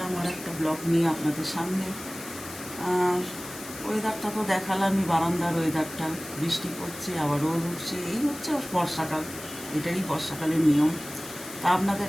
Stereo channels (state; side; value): noise; left; hiss, 13 dB below the sound